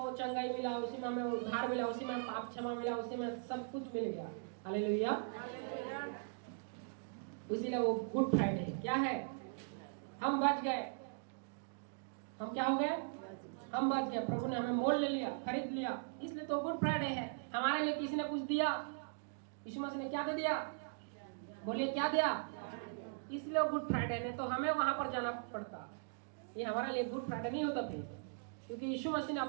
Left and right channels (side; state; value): left; silent; digital silence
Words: चंगाई मिला, उसी में हमें उद्धार मिला, उसी में पाप क्षमा मिला, उसी में सब कुछ मिल गया। हालेलुया। इसीलिए वो गुड फ्राइडे क्या है? हम बच गए। हम क्या हो गए? हम बच गए। प्रभु ने हमें मोल ले लिया, खरीद लिया, इसलिए तो गुड फ्राइडे है। हमारे लिए किसी ने कुछ दिया। यीशु मसीह ने क्या दे दिया? बोलिए क्या दिया? इसलिए वो गुड फ्राइडे ने तो हमें वहां पर जाना पड़ता। ये हमारे लिए गुड फ्राइडे नहीं होता फिर, क्योंकि यीशु मसीह ने